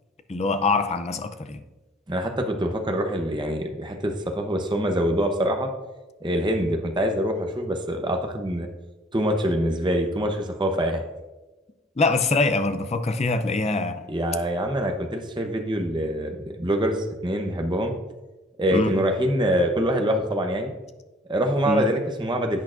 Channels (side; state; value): both; normal; correlation 0.54